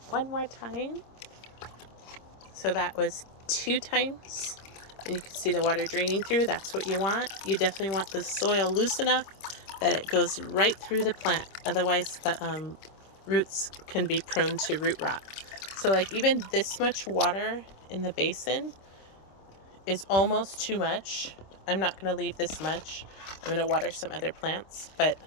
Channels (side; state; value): right; late; 26 ms